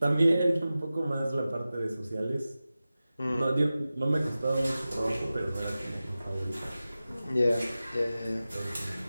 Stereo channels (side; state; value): both; inverted; correlation -0.95